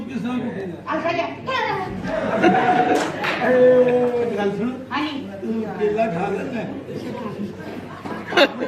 ਕਿਸ ਤਰ੍ਹਾਂ ਘੁੱਟੇ ਅੱਛਾ ਜੀ ਗੱਲ ਸੁਣ ਹਾਂਜੀ ਕੇਲਾ ਖਾ ਲੈਂਦਾ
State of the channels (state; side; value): identical; both; correlation 1.00